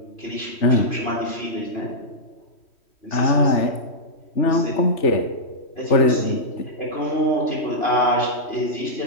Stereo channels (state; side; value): late; right; 3.1 ms